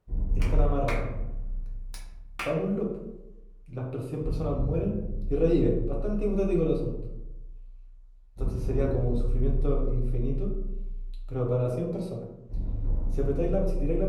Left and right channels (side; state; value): both; identical; correlation 1.00